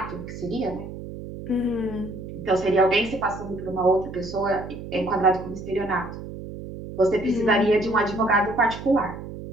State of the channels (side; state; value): right; noise; hum, 11 dB below the sound